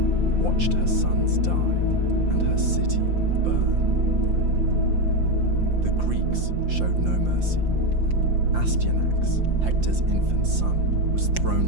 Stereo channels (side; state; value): left; late; 5.8 ms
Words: watched her sons die and her city burn. The Greeks showed no mercy. Astyanax, Hector's infant son, was